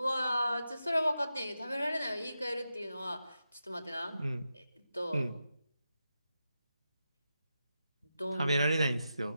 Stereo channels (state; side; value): inverted; both; correlation -0.88